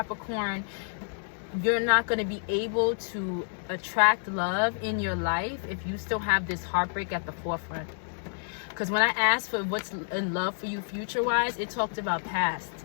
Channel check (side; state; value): right; silent; digital silence